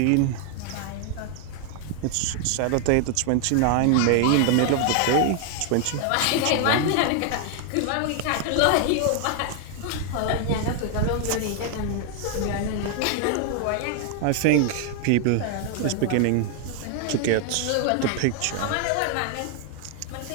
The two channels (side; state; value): both; different; correlation 0.00